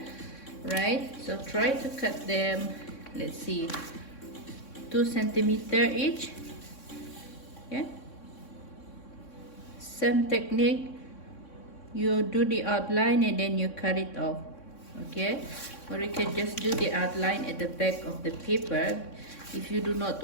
right? So try to cut them, let's see, 2 centimeter each. Okay, same technique, you do the outline and then you cut it off. Okay, or you can just do the outline at the back of the paper if you do not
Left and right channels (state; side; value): late; right; 3.6 ms